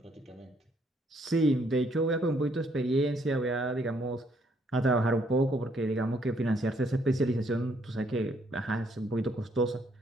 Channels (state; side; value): normal; both; correlation 0.69